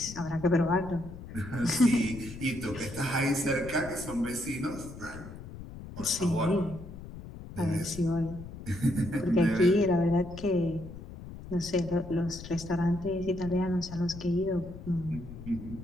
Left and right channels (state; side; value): noise; left; rumble, 13 dB below the sound